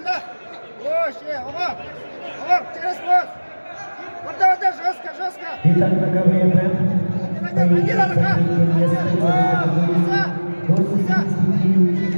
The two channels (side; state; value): both; inverted; correlation -1.00